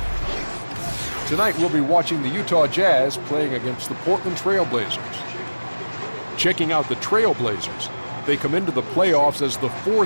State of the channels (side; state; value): both; inverted; correlation -1.00